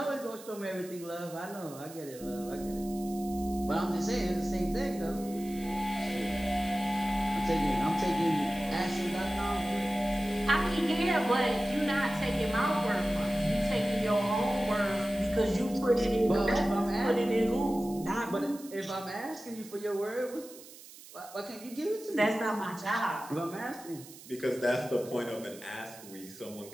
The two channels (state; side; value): noise; right; hiss, 18 dB below the sound